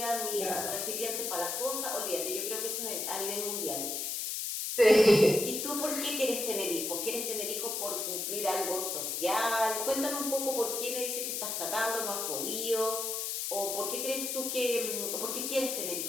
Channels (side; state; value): left; noise; hiss, 2 dB below the sound